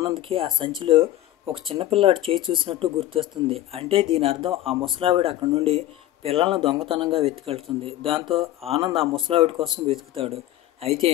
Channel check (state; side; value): quieter; right; 13.9 dB